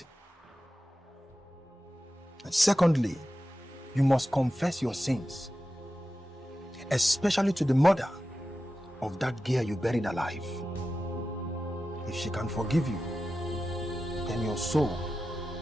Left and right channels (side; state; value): both; normal; correlation 0.93